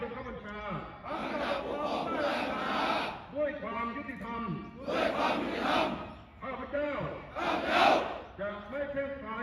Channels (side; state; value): both; identical; correlation 1.00